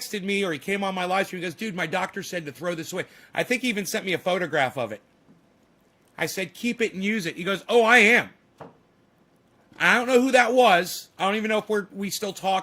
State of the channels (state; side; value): identical; both; correlation 1.00